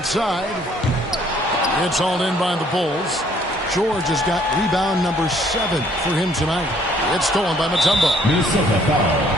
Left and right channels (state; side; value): normal; both; correlation 0.62